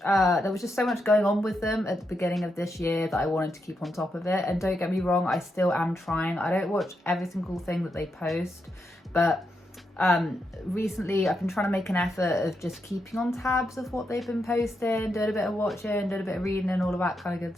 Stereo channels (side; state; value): both; normal; correlation 0.83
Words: There was just so much going on with them at the beginning of this year that I wanted to keep on top of it. And don't get me wrong, I still am trying. I don't watch every single thing that they post, but recently I've been trying to make an effort of just keeping on tabs of what they've been posting, doing a bit of watching, doing a bit of reading and all of that kind of